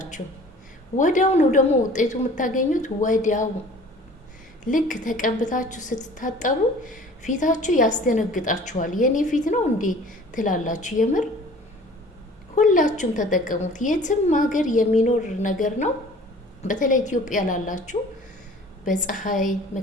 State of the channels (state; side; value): normal; both; correlation 0.48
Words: ወዲያው ነው ደግሞ ውጤቱ የምታገኙት። ወዲያው ልክ ተቀብታችሁ ስትታጠቡ ፊታችሁ ያስደነግጣችኋል። የኔ ፊት ነው እንዴ ትላላችሁ። የምር ሁላችሁም ተጠቀሙት። የትም ሀገር የሚኖር ነገር ነው። በተለይ ኢትዮጵያ ላላችሁ በፀሐይ